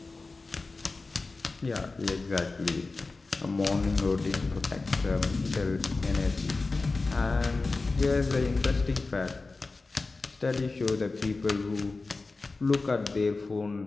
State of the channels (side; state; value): right; quieter; 3.7 dB